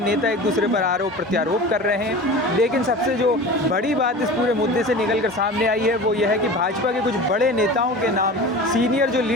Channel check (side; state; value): both; normal; correlation 0.35